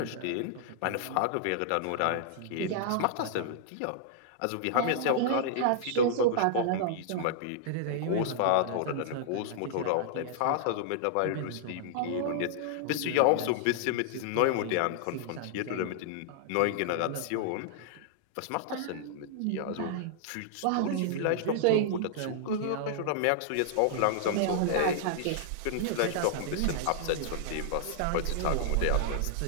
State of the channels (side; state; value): both; different; correlation -0.01